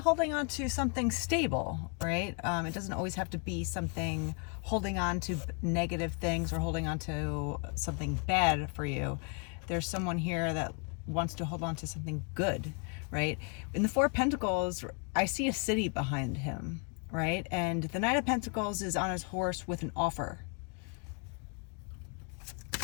on to something stable, right? It doesn't always have to be something holding on to negative things or holding on to something bad for you. There's someone here that wants to hold on to something good, right? In the Four of Pentacles, I see a city behind him, right? And the Knight of Pentacles is on his horse with an offer.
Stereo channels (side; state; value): right; quieter; 36.5 dB